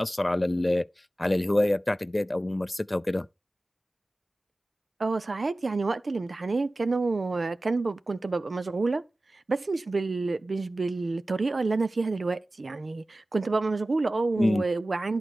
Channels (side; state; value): both; normal; correlation 0.96